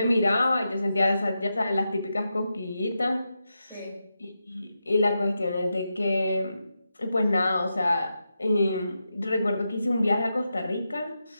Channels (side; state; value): both; inverted; correlation -0.88